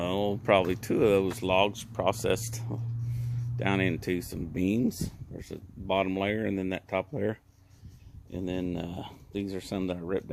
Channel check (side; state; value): both; identical; correlation 1.00